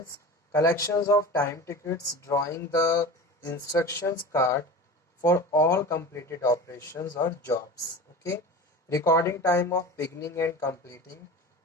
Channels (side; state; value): both; normal; correlation 0.32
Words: collections of time tickets, drawing the instructions card for all completed operations or jobs. Okay, recording time of beginning and completing